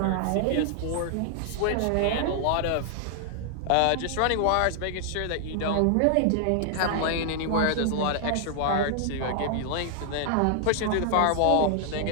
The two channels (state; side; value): different; both; correlation 0.00